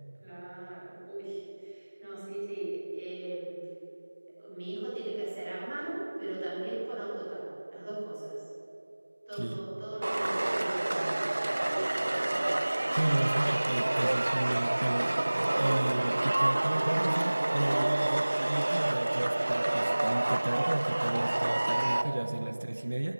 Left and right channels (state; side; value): inverted; both; correlation -1.00